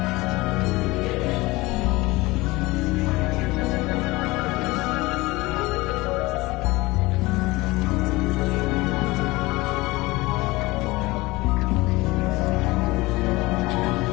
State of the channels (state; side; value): quieter; right; 21.4 dB